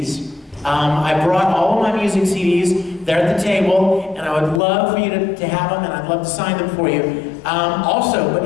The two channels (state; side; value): drops out; right; at 4.6 s